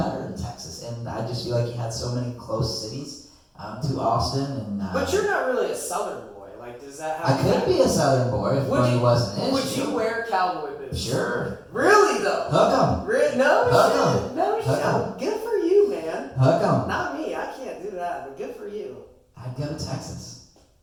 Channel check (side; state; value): both; identical; correlation 1.00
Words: in Texas. And I just feel like you had so many close cities to Austin. And but you're not really a Southern boy. Does that happen? I could be a Southern boy if money wasn't an issue. Would you wear cowboy boots? Sure. Really, though? Hook 'em. No shit. Good for you, man. Hook 'em. Not me. I can't do that, but good for you. I'd go to Texas.